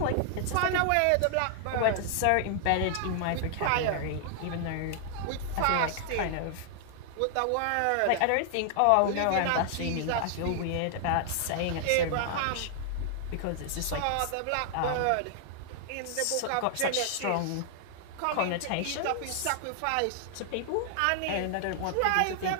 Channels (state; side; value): different; both; correlation 0.00